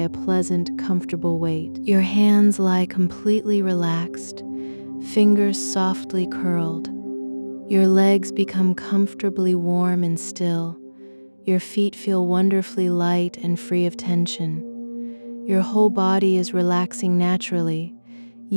pleasant, comfortable weight. Your hands lie completely relaxed, fingers softly curled. Your legs become comfortably warm and still. Your feet feel wonderfully light and free of tension. Your whole body is relaxing naturally,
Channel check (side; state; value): both; inverted; correlation -1.00